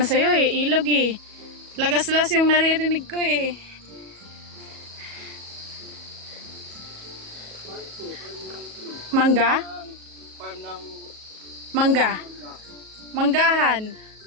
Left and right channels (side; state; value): left; late; 37 ms